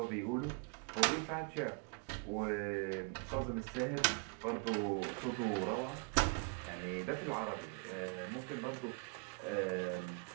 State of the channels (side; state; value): left; quieter; 36.3 dB